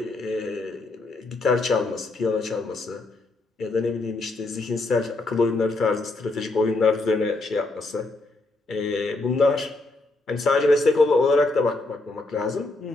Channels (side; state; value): right; quieter; 3.1 dB